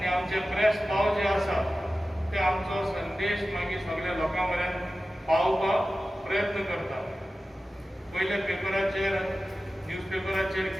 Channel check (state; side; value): normal; both; correlation 0.95